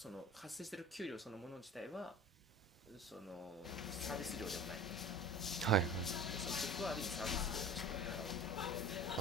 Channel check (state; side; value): normal; both; correlation 0.37